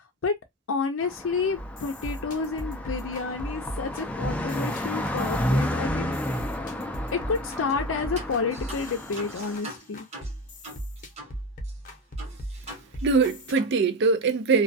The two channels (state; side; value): normal; both; correlation 0.23